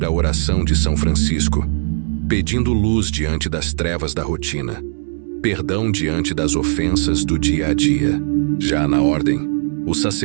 a oração de São Francisco, pedindo luz diante das trevas da rotina. perdão diante das ofensas do dia a dia. Já na ordem, o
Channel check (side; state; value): left; silent; 67 dB below the other